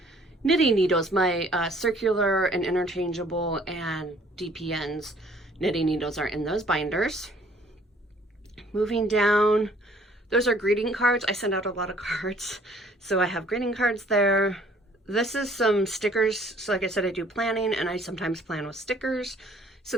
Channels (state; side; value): normal; both; correlation 0.58